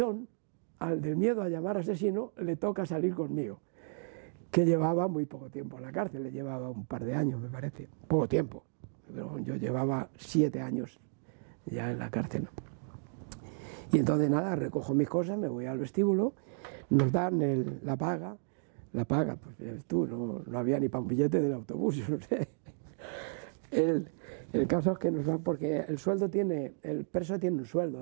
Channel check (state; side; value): silent; left; digital silence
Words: al del miedo a llamar asesino, le toca salir conmigo, que llevaba muy poco tiempo en la cárcel, le llevaba un par de años, me parece, poco tiempo, pero yo llevaba 7 años ya en la cárcel, ¿no? Y entonces nada, recojo mis cosas, me voy al vestíbulo, nos dan la paga, pues tú, no había ni para un billete del autobús, yo no sé. El caso es que nos dan, porque el preso tiene un sueldo,